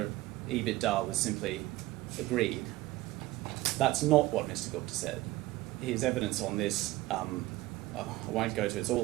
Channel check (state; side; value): quieter; left; 18.0 dB